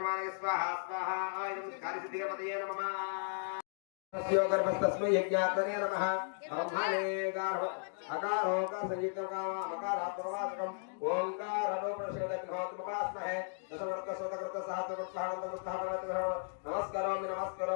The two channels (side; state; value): right; silent; digital silence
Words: स्वाहा स्वाहा इदं कार्यसिद्धिगणपतये नमः तस्यो गर्भस्तस्मै यज्ञात्मने नमः ब्रह्मणे गार्भ अकारो का संयुक्तकामा मकारात्मवाचकम् ओंकारो प्रशोदग्नोत्मपास्महे दशवर्तसोतकृत सहस्रकृत्साहनन्तमुत्थापनमः नमस्करोमि